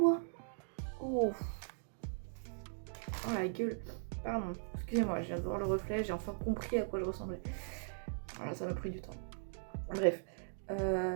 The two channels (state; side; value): silent; left; digital silence